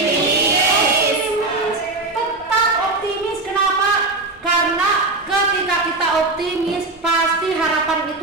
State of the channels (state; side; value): quieter; left; 3.2 dB